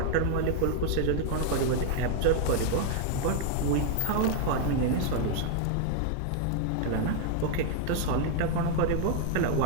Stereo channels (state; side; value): different; both; correlation 0.00